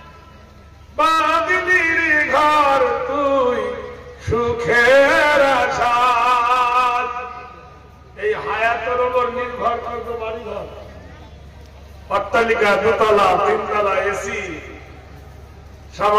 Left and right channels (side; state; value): both; identical; correlation 1.00